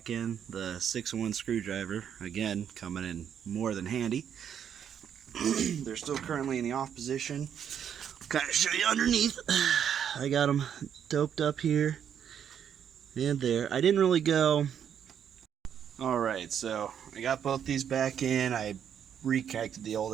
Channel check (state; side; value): quieter; left; 8.7 dB